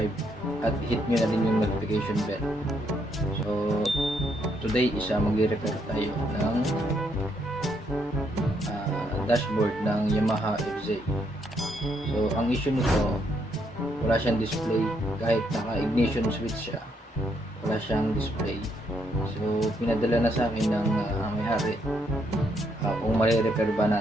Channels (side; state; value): both; normal; correlation 0.74